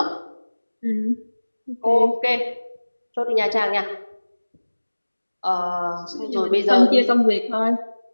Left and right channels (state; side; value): inverted; both; correlation -1.00